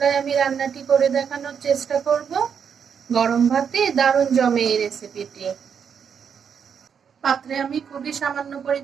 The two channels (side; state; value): left; quieter; 7.2 dB